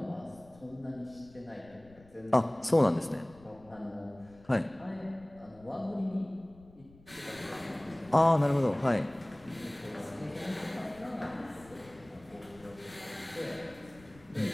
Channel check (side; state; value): left; noise; rumble, 24 dB below the sound